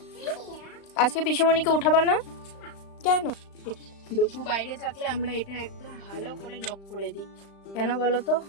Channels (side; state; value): right; late; 35 ms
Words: আজকে পিসিমণিকে উঠাবা না কেন? দুপু বাইরে থাকলে আমরা এটা একদম ভালো করে লক করে দিই। কেন বলতো,